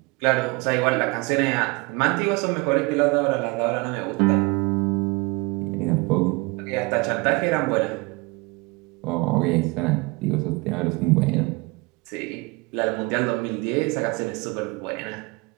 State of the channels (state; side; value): quieter; left; 26.2 dB